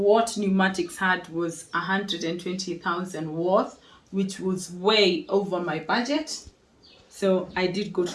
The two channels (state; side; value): identical; both; correlation 1.00